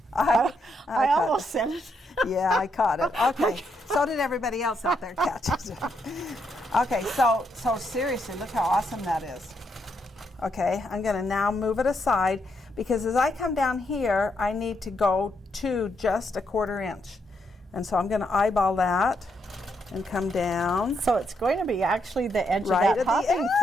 I almost said it. Yeah, I caught it. Okay, so did everybody else out there catch it. Okay, so seriously, look how awesome that is. Okay, I'm going to now move it aside, because as I come down here, I need to go to just a 1/4 inch. And so I'm going to eyeball that and come down. So it's going to be actually the edge Right of that at the hopping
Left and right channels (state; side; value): normal; both; correlation 0.78